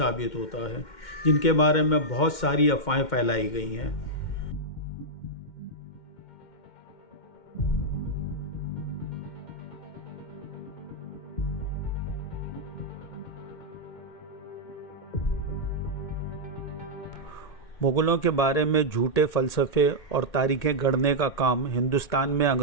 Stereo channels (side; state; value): right; late; 2.1 ms